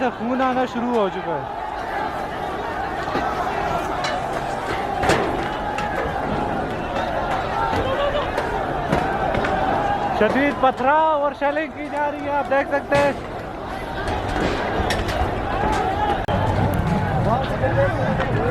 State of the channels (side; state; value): both; identical; correlation 1.00